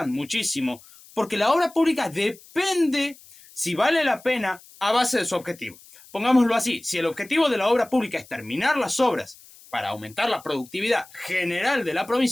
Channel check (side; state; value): left; noise; hiss, 23 dB below the sound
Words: muchísimo, porque la obra pública depende si vale la pena a base de su objetivo. Pongámoslo así, si el objetivo de la obra pública es terminar las obras para aumentar la productividad general de la